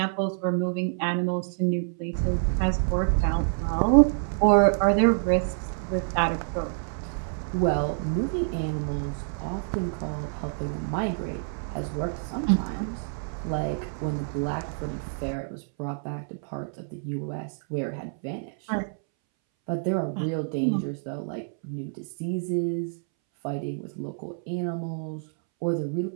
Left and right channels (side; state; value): left; silent; 60 dB below the other